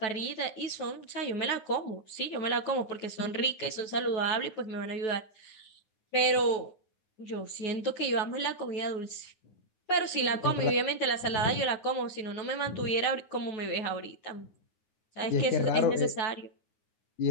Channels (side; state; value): right; late; 9.2 ms